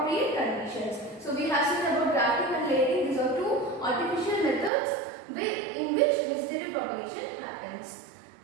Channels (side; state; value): left; drops out; at 4.7 s